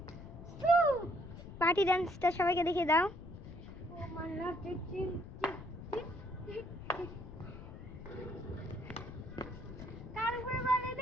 পার্টি ডান্সটা সবাইকে দেখিয়ে দাও।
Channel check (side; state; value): left; noise; rumble, 13 dB below the sound